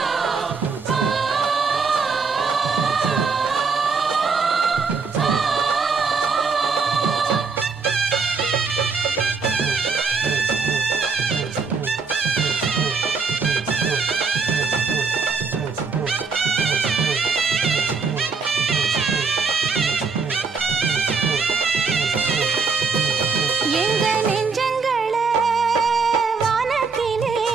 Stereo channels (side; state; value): left; quieter; 5.0 dB